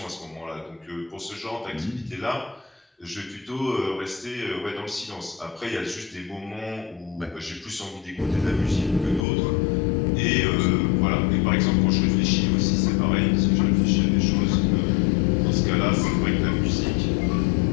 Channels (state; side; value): drops out; right; at 9.2 s